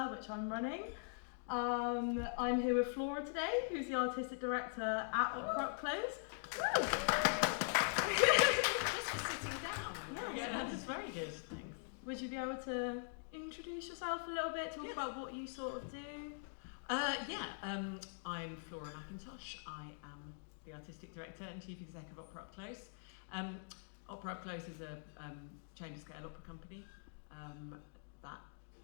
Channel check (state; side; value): silent; right; digital silence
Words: which I'm running. I'm here with Flora today, who's the Artistic Director at OperaUpClose. Just for sitting down. Yeah, that's very good, thanks. Would you be able to introduce yourself a little bit, talk about what you sort of do? I'm Flora McIntosh. I am the Artistic Director and Chief Exec of OperaUpClose. OperaUpClose is a chamber scale opera company that